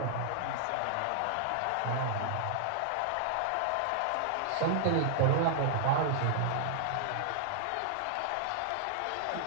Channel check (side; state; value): both; different; correlation -0.01